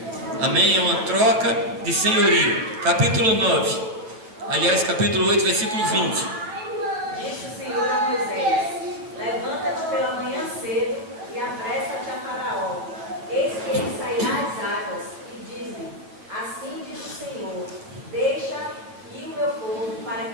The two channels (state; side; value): late; left; 9.4 ms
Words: Amém? É uma troca de senhorio. Capítulo 9. Aliás, capítulo 8, versículo 20. Disse o Senhor a Moisés: levanta-te pela manhã cedo e apressa-te a Faraó. Eis que ele sairá às águas, e diz-lhe: assim diz o Senhor, deixa ir o meu povo para